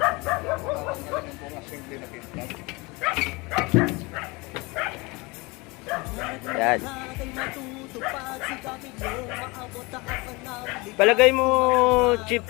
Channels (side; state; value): right; quieter; 25.4 dB